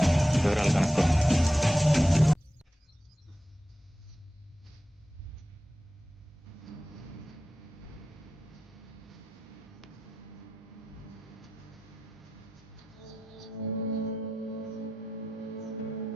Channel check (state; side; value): normal; both; correlation 0.92